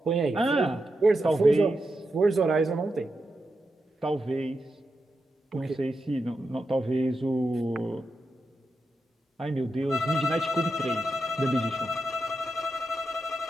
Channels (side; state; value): both; normal; correlation 0.87